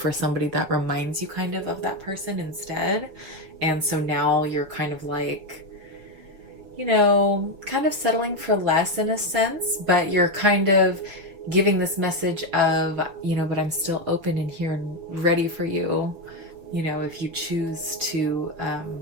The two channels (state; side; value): late; left; 5.9 ms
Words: somebody that reminds you kind of that person instead. And so now you're kind of like, you know, kind of settling for less in a sense, but you're kind of giving this message of, you know, but I'm still open and here and ready for you, you know, if you choose to